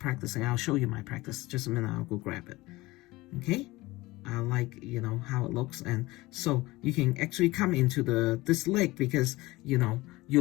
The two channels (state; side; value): quieter; right; 20.2 dB